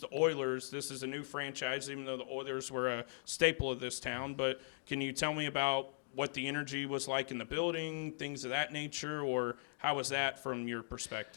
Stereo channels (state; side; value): silent; right; digital silence